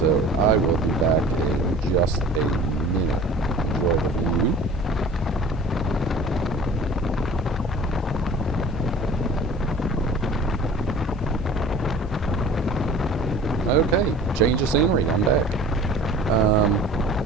I will be back in just a minute. Enjoy the view. Okay, change of scenery. I'm back.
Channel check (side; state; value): both; normal; correlation 0.44